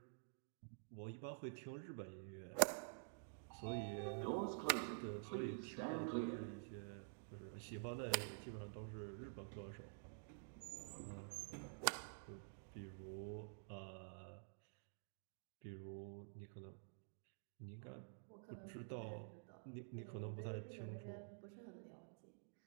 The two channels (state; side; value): silent; left; digital silence